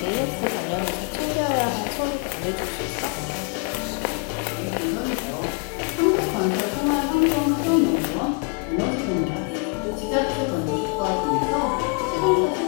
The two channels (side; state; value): right; quieter; 34.6 dB